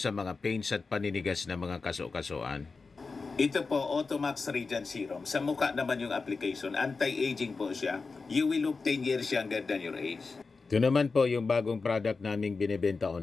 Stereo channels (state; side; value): quieter; right; 4.3 dB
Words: mga pains at paninigas na mga kaso-kasuan. Ito po, Automax Radiant Serum. Sa mukha naman yung application. Anti-aging po siya. You will look 10 years younger than your age. Ito naman po yung bagong product naming binibenta